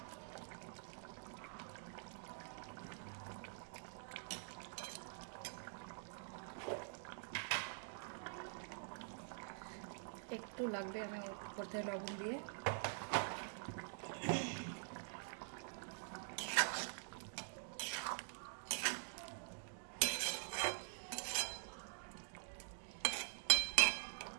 একটু লাগবে, আমি উপর থেকে লবণ দিয়ে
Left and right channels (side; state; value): left; silent; digital silence